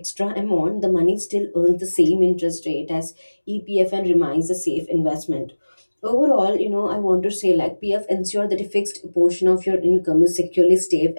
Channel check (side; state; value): both; inverted; correlation -1.00